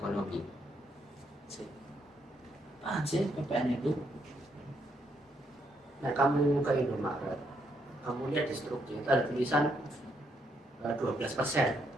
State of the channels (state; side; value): normal; both; correlation 0.75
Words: Apaan sih PPN itu? Nah, kamu ke Indomaret, kamu lihat di struktur itu ada tulisan 12%.